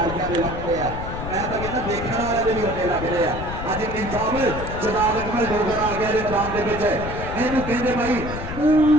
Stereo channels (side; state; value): left; noise; rumble, 7 dB below the sound